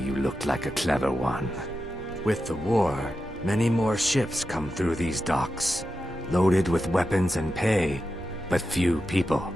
looked like a clever one. With the war, many more ships come through these docks, loaded with weapons and pay, but few people,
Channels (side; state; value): both; normal; correlation 0.89